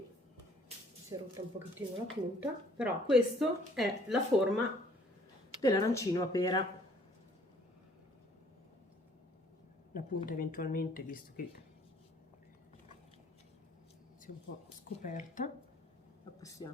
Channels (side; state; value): both; normal; correlation 0.59